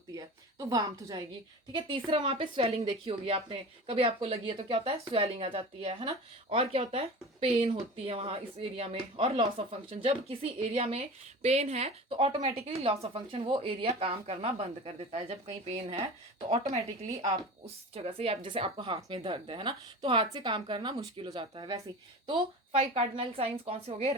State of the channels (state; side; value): normal; both; correlation 0.34